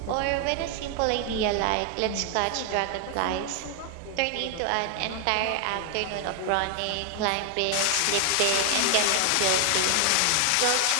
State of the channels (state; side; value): different; both; correlation 0.00